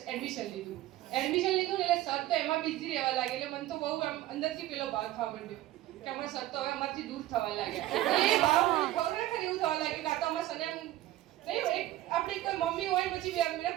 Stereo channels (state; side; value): quieter; left; 15.1 dB